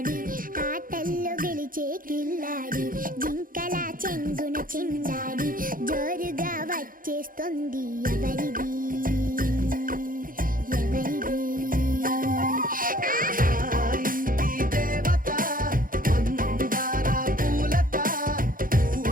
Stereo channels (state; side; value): late; left; 0.40 ms